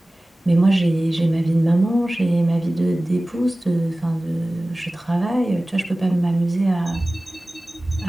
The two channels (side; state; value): both; normal; correlation 0.97